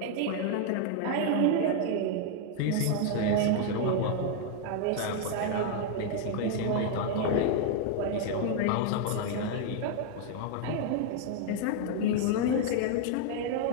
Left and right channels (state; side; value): different; both; correlation 0.00